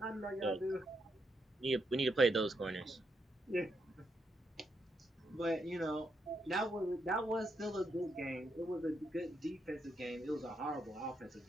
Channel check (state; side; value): normal; both; correlation 0.80